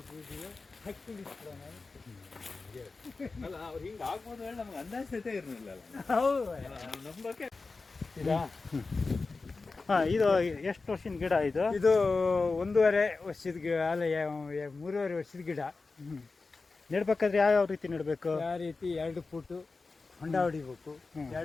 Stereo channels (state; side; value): quieter; right; 3.9 dB